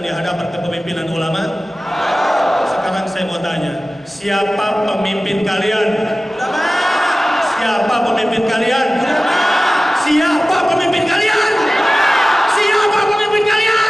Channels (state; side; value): normal; both; correlation 0.96